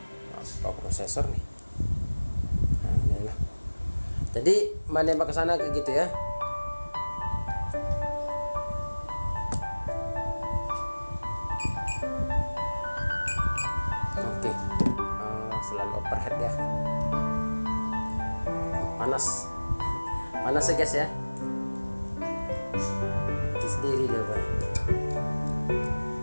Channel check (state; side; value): inverted; both; correlation -1.00